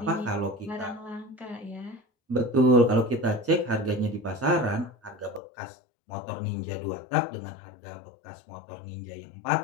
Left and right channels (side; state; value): right; drops out; at 5.4 s